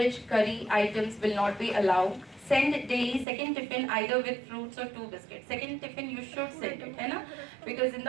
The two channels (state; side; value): drops out; left; at 3.2 s